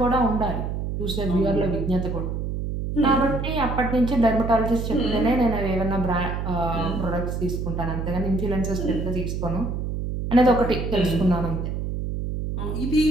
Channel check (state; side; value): noise; right; hum, 3 dB below the sound